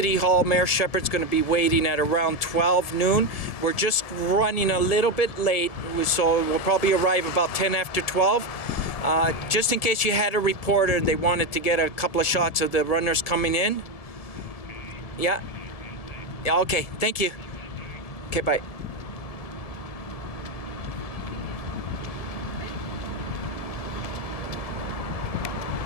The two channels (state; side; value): late; right; 1.6 ms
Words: Hall. Mayor Shepherd's going to be waiting at around 12 noon. We're just running a little bit late, so we'll probably arrive about 10 after 12. Just in case you had a reporter and they wanted to get a couple of shots of the runners coming in. Yeah? Yeah, okay, thank you. Okay, bye.